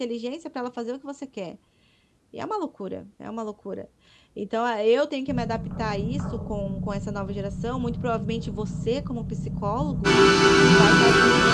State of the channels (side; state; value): both; identical; correlation 1.00